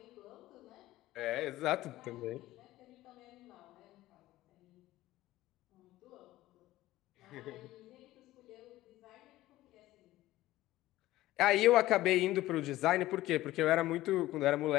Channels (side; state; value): right; quieter; 16.2 dB